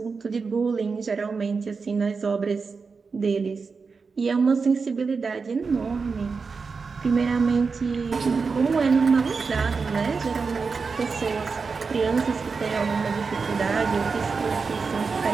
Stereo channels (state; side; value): quieter; left; 4.9 dB